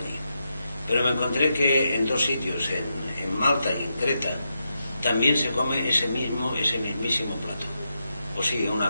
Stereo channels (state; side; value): inverted; both; correlation -0.85